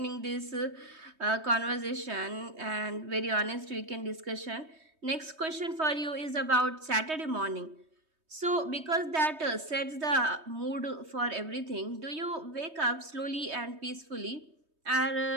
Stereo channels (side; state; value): left; late; 3.2 ms